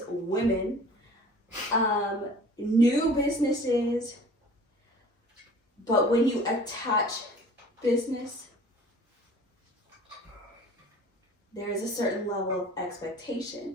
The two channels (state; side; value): normal; both; correlation 0.47